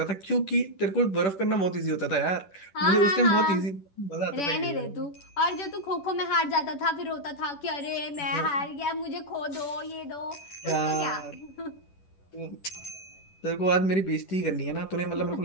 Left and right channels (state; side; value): late; right; 10 ms